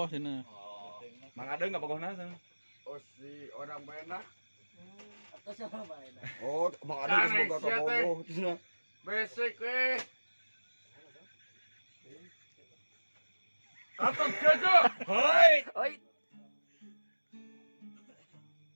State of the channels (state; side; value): inverted; both; correlation -1.00